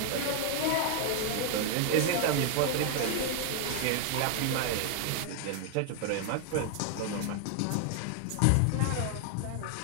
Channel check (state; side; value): different; both; correlation 0.00